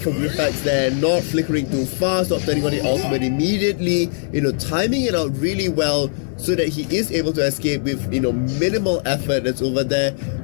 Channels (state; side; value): silent; right; 66 dB below the other